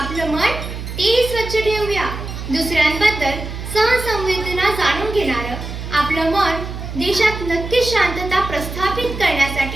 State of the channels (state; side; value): noise; right; hum, 8 dB below the sound